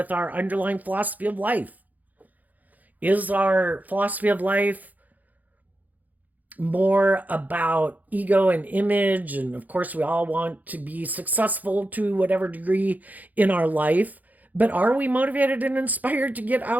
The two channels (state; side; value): late; left; 0.081 ms